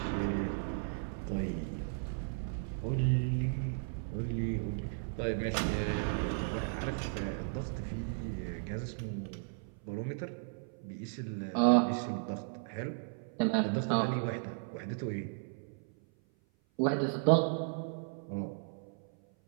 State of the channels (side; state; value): left; silent; 54 dB below the other